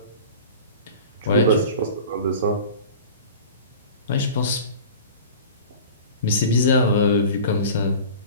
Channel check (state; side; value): inverted; both; correlation -0.39